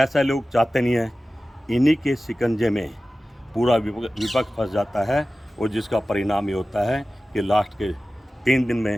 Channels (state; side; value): normal; both; correlation 0.96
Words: लोग चाहते नहीं हैं। इन्हीं के शिकंजे में पूरा विपक्ष फंस जाता है और जिसका परिणाम ये होता है कि लास्ट के 3 दिन में